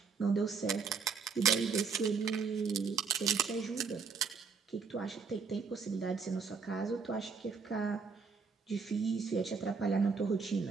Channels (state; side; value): quieter; left; 5.3 dB